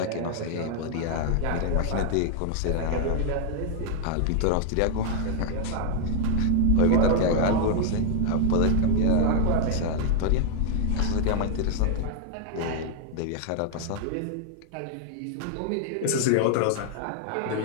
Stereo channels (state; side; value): different; both; correlation 0.00